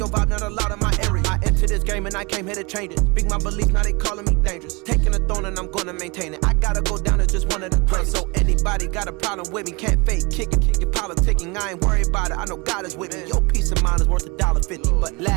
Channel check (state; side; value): quieter; left; 27.2 dB